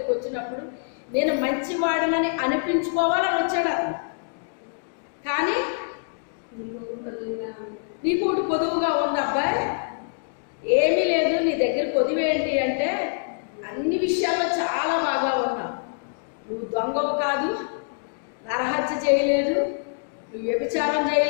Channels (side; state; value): right; silent; digital silence